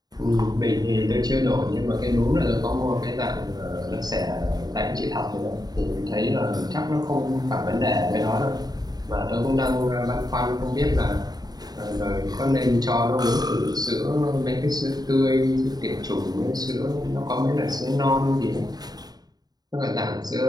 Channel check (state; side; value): late; left; 0.19 ms